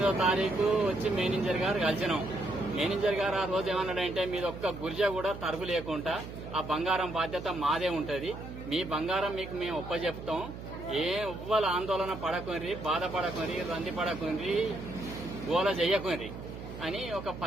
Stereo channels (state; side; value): noise; right; hum, 11 dB below the sound